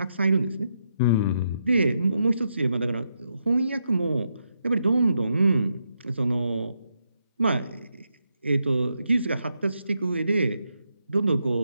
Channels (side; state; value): both; inverted; correlation -0.81